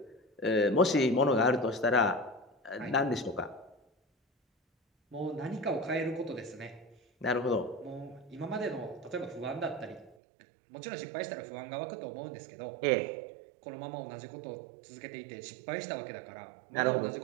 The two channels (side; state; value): left; drops out; at 10.2 s